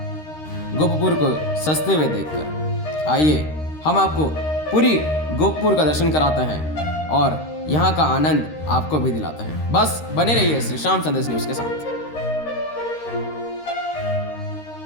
गोपपुर को सजते हुए देखकर। आइए हम आपको पूरी गोपपुर का दर्शन कराते हैं और यहाँ का आनंद आपको भी दिलाते हैं। बस बने रहिए श्री श्याम संदेश न्यूज के साथ।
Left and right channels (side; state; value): right; late; 13 ms